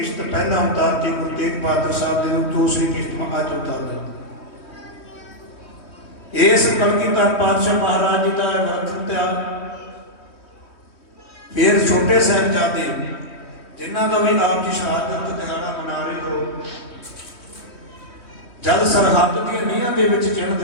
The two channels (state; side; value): late; right; 3.1 ms